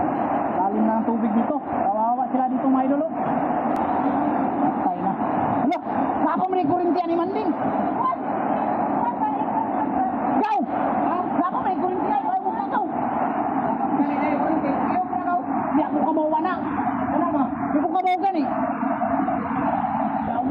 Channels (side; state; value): both; identical; correlation 1.00